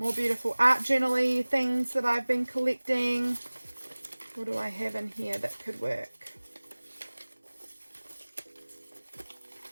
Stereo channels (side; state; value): both; inverted; correlation -1.00